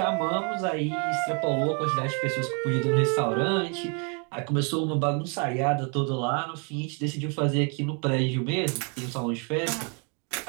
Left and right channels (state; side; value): quieter; left; 36.7 dB